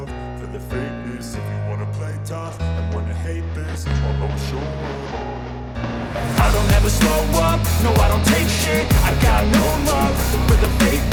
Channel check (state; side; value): identical; both; correlation 1.00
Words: for the fakeness. If you wanna play tough and wanna hate this, I'll always show up. I don't ever slow up, no I don't take shit. I got no love for the